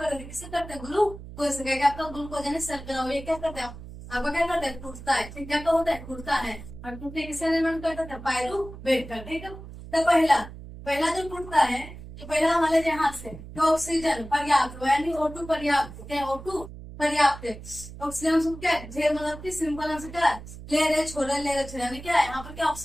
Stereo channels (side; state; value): right; noise; hum, 14 dB below the sound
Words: किसे करते हैं, ग्लूकोज से। क्या आपका ग्लूकोज यानी शर्करा, ये क्या करते हैं आपका, क्या करते हैं, टूटता है। ठीक, क्या तो होता है, टूटता है। और टूटने किसे निर्माण करता है, पायरुवेट का। ठीक है, तो पहला पहला जो टूटता है, तो पहला हमारे यहाँ से तो ऑक्सीजन पर्याप्त हो, यानी O2 पर्याप्त, क्या O2 पर्याप्त है। ऑक्सीजन हम क्या है, ढेर मतलब कि सिंपल आंसर क्या है, ले रहे छोड़े, ले रहे छोड़े, यानी क्या है यहाँ पर क्या